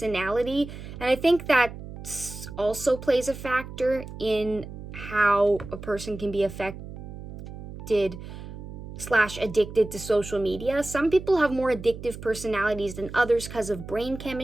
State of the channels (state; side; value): noise; right; hum, 12 dB below the sound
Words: and I think that also plays a factor in how a person can be affected / addicted to social media. Some people have more addictive personalities than others because of brain